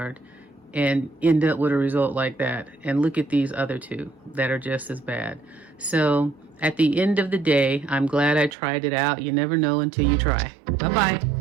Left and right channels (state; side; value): drops out; left; at 8.5 s